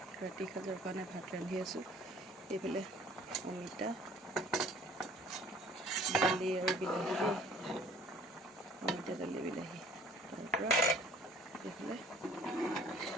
ৰাতি সাজৰ কাৰণে ভাত ৰান্ধি আছোঁ এইফালে অমিতা দালি আৰু বিলাহী দেই অমিতা দালি বিলাহী তাৰপৰা এইফালে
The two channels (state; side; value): normal; both; correlation 0.51